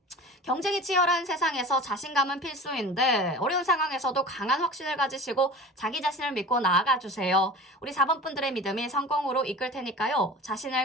경쟁이 치열한 세상에서 자신감은 필수인데 어려운 상황에서도 강한 확신을 가지시고 자기 자신을 믿고 나아가주세요. 우리 4번 분들의 믿음이 성공으로 이끌 테니까요.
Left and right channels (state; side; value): normal; both; correlation 0.37